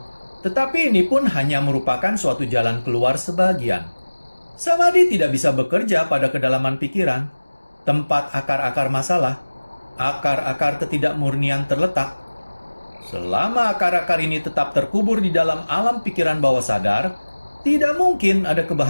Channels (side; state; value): both; inverted; correlation -1.00